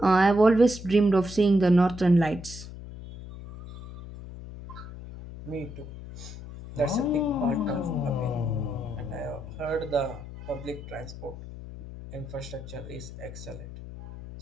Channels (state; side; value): noise; left; hum, 13 dB below the sound